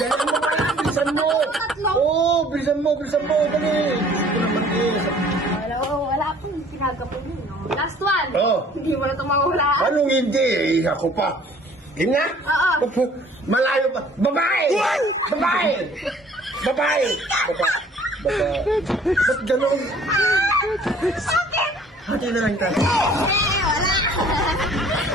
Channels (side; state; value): both; normal; correlation 0.54